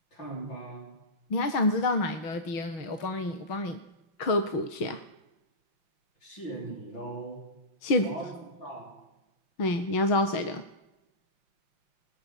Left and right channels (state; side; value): late; right; 6.2 ms